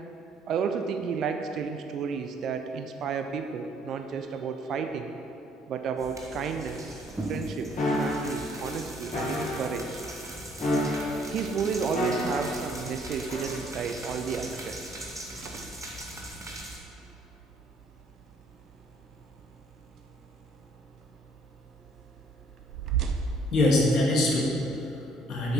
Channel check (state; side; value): normal; both; correlation 0.63